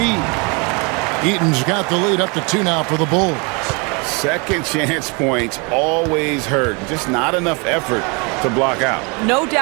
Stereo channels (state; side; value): quieter; left; 31.2 dB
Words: Eaton's got the lead up to 2 now for the Bulls. Second chance points always hurt. Just not enough effort to block out. No